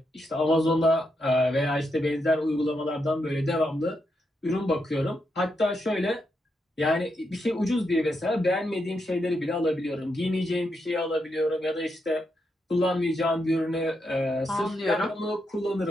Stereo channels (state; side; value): normal; both; correlation 0.82